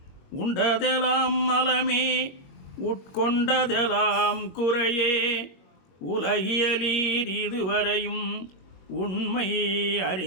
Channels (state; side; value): late; right; 22 ms